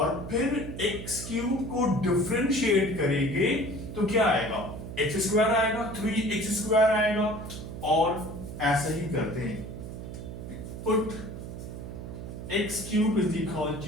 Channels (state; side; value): noise; right; hum, 9 dB below the sound